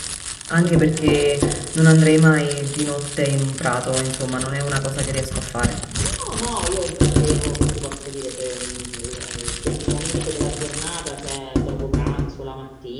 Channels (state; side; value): identical; both; correlation 1.00